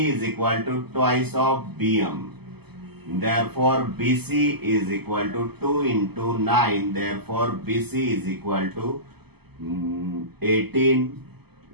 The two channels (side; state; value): left; late; 0.97 ms